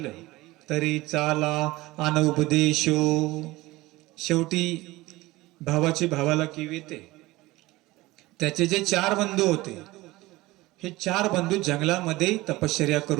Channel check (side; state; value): left; quieter; 19.6 dB